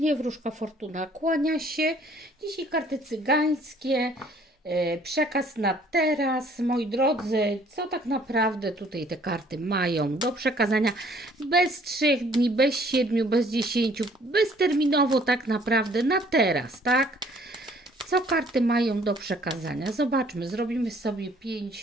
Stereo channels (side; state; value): both; normal; correlation 0.59